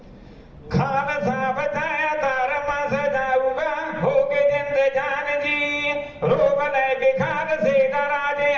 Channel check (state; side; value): identical; both; correlation 1.00